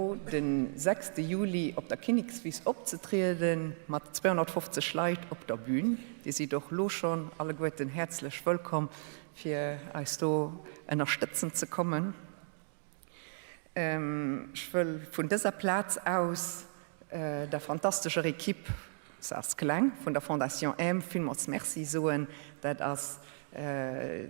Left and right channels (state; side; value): silent; left; digital silence